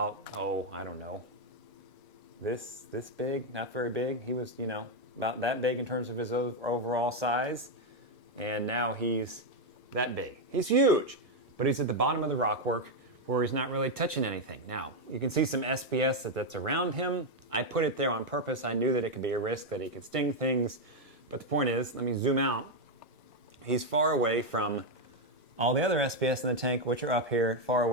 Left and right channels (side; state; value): both; normal; correlation 0.02